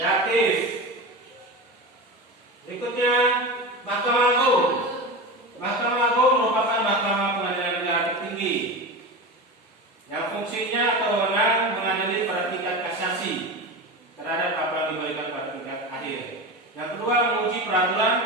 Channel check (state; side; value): normal; both; correlation 0.25